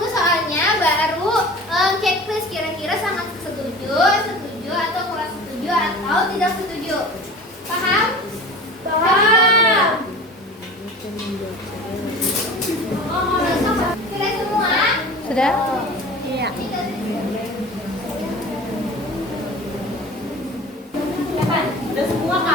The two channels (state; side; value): normal; both; correlation 0.38